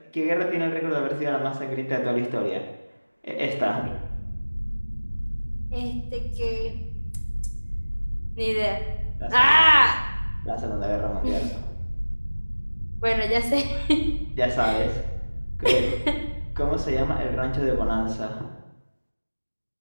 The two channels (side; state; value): both; inverted; correlation -1.00